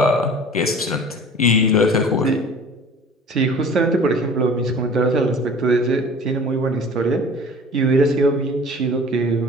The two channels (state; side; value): normal; both; correlation 0.44